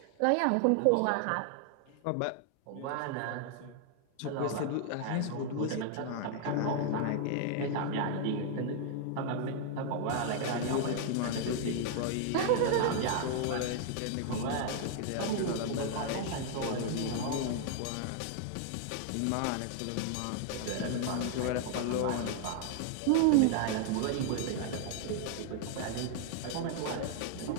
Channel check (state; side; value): different; both; correlation 0.00